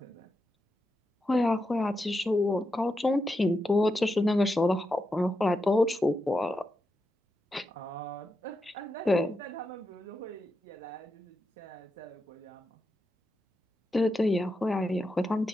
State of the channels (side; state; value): both; normal; correlation 0.87